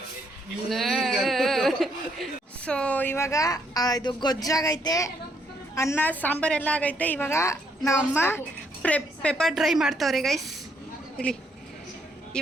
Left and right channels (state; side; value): normal; both; correlation 0.72